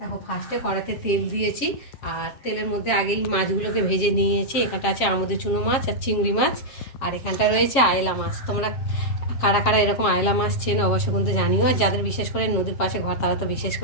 ফার্স্টে কড়াতে তেল দিয়েছি, আর তেলের মধ্যে আগেই মাছগুলোকে ভেজে নিয়েছি। এখানটা আছে আমুদের চুনো মাছ আর চিংড়ি মাছ, আর এখানটা রয়েছে আয়লা মাছ। তোমরা কারা কারা এরকম আয়লা মাছ চেনো অবশ্য কিন্তু জানিও, আর যাদের বিশেষ করে নদীর পাশে ঘর তারা তো বিশেষ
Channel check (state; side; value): late; right; 7.4 ms